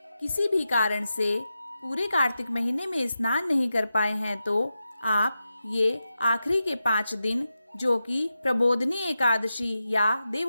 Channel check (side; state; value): both; inverted; correlation -0.90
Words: किसी भी कारण से पूरे कार्तिक महीने में स्नान नहीं कर पाए हैं तो आप ये आखिरी के 5 दिन, जो कि प्रबोधनी एकादशी या